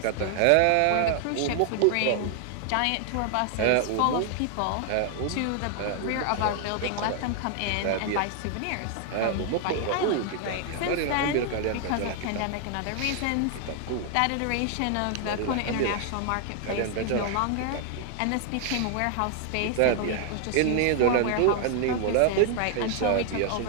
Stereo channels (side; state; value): both; different; correlation 0.00